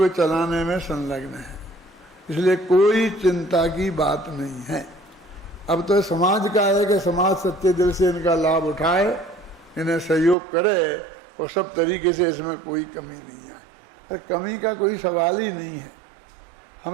चलाने में संलग्न है। इसलिए कोई चिंता की बात नहीं है। अब तो समाज का है कि समाज सच्चे दिल से इनका लाभ उठाए, इन्हें सहयोग करे और सब तरीके से इसमें कोई कमी नहीं है। तो कमी का कोई सवाल ही नहीं है।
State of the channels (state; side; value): drops out; left; at 10.4 s